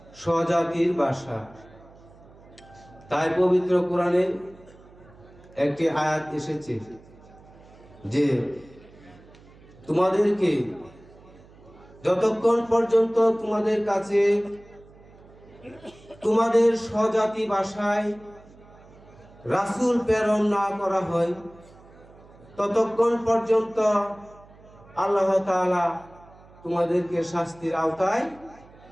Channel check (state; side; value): noise; right; hum, 24 dB below the sound